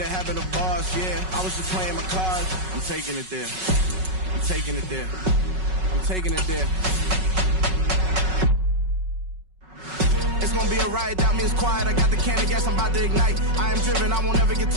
happen to bars, yeah. I was just playing my cards. I'm taking it there. I'm taking it there. I'm taking it there. It's gonna be a riot, doubt me it's quiet. I got the can of gas, I'm about to ignite. I am driven, I won't ever get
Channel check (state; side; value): late; left; 5.4 ms